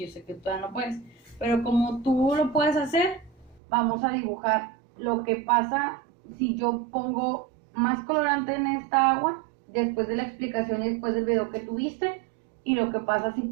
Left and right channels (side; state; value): left; drops out; at 3.6 s